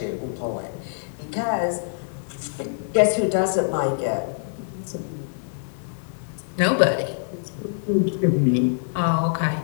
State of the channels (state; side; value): silent; right; digital silence